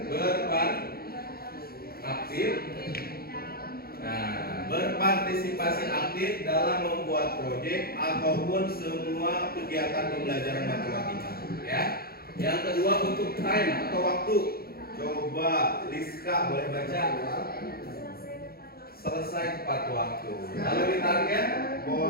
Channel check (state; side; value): late; right; 0.44 ms